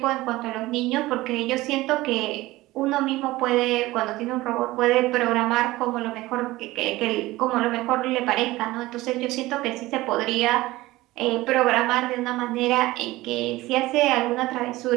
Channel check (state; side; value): quieter; left; 18.5 dB